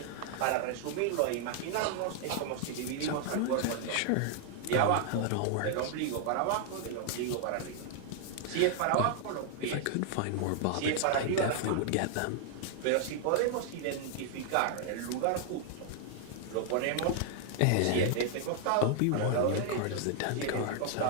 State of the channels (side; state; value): both; different; correlation 0.00